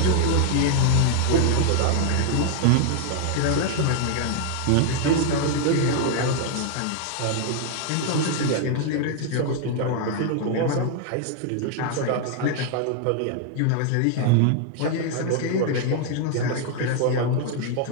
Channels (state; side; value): different; both; correlation 0.00